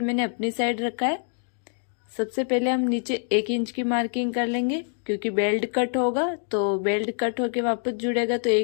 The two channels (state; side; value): silent; right; 61 dB below the other